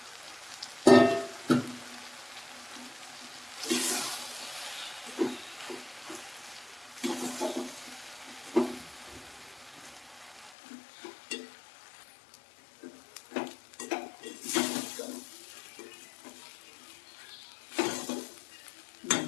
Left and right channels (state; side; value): drops out; right; at 10.5 s